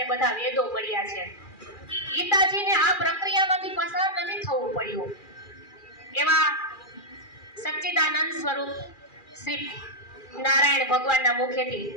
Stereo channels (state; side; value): late; right; 2.4 ms